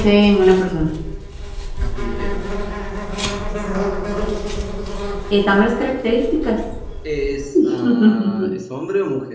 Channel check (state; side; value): identical; both; correlation 1.00